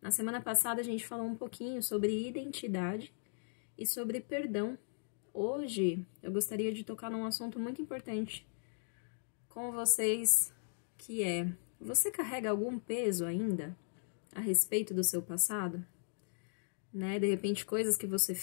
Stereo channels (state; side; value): silent; right; digital silence